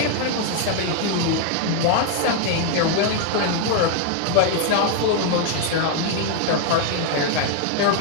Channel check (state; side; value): different; both; correlation 0.00